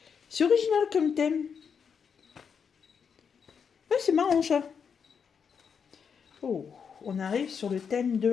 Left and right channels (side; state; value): right; quieter; 6.6 dB